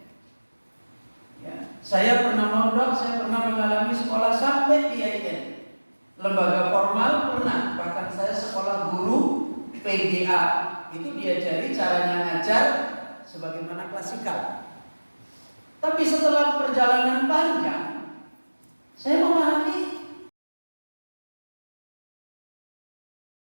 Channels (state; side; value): inverted; both; correlation -1.00